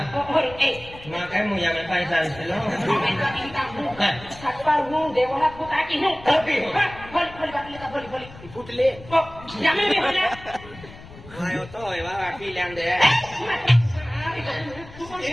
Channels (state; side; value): noise; left; rumble, 18 dB below the sound